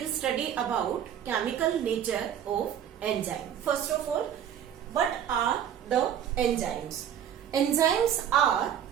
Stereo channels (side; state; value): left; quieter; 9.5 dB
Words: study about chemical nature of enzyme. First of all, what are the enzymes? Enzymes are